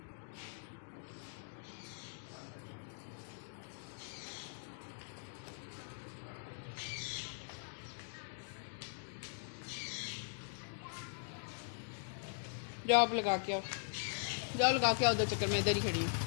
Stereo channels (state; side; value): silent; right; digital silence